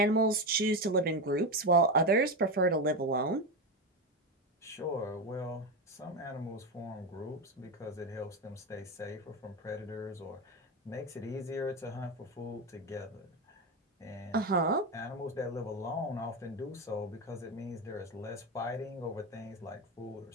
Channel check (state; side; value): normal; both; correlation 0.15